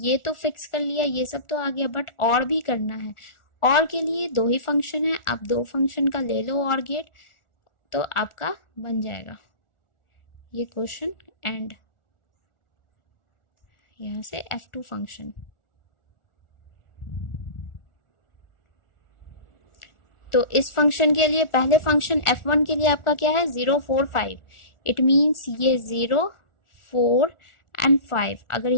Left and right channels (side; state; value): right; late; 1.4 ms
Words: तो फिक्स कर लिया, ये सब तो आ गया, बट और भी करना है। और के लिए 2 ही फंक्शन है, आप 2 फंक्शन का ले लो और गेट, तो आपका बन जाएगा ये क्वेश्चन एंड यहाँ से F2 फंक्शन। तो इस फंक्शन के लिए पहले फंक्शन F1 के लिए आपका क्या है, 0 4 5, इट मीन्स ये 0 4 एंड 5, अगर